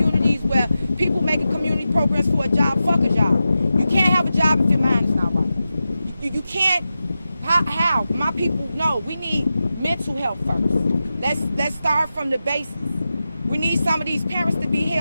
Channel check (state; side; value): inverted; both; correlation -0.91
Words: where people making community programs for a job. Fuck a job. You can't have a job if your mind is not right. You can't. How? My people know we need mental health first. Let's start from the basis. We need some of these parents to be